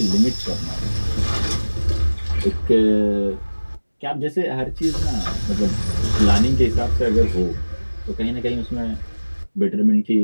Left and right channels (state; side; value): inverted; both; correlation -1.00